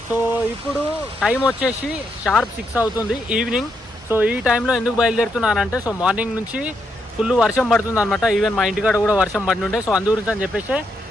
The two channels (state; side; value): normal; both; correlation 0.79